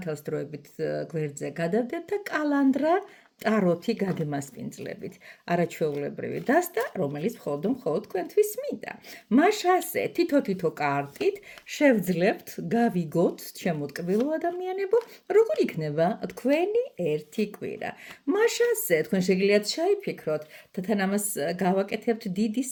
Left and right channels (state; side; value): identical; both; correlation 1.00